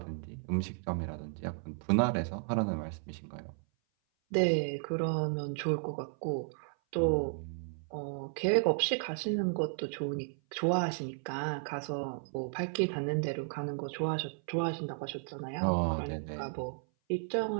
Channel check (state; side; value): silent; left; 55 dB below the other